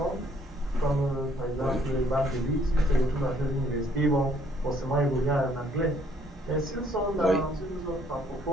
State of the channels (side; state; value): both; normal; correlation 0.64